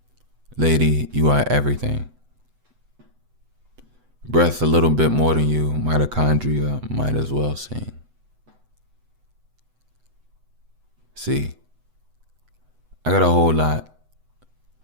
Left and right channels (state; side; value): late; left; 8.0 ms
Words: Lady, you are everything. Breath a little bit more than you, mitochondria might as well sing. See, I got a whole lot.